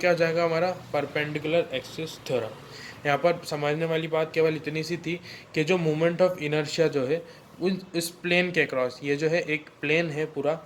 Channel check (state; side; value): identical; both; correlation 1.00